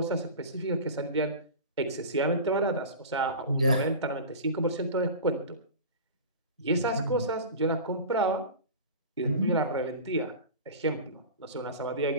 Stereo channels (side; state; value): both; inverted; correlation -0.32